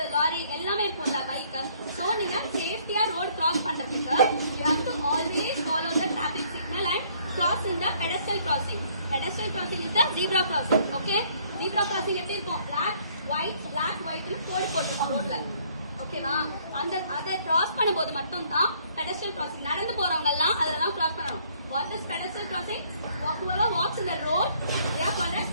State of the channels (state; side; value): inverted; both; correlation -0.63